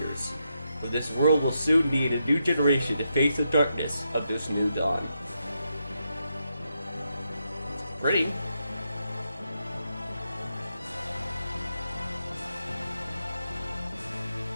For this world will soon need a new generation to face the darkness of this new dawn. It's pretty.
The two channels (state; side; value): inverted; both; correlation -0.83